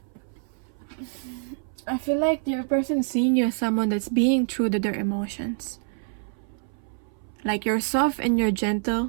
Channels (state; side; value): silent; left; 60 dB below the other